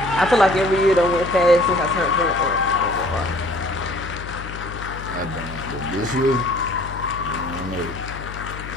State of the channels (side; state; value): left; noise; hum, 11 dB below the sound